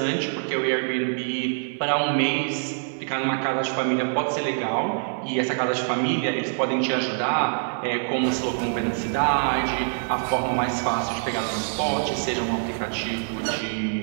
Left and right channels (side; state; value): left; silent; digital silence